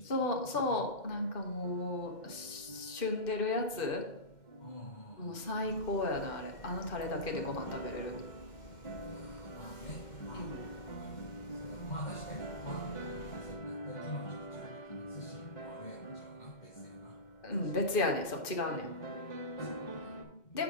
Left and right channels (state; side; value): late; right; 2.1 ms